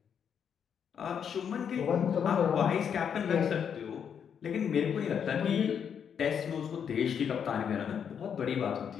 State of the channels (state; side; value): quieter; right; 7.7 dB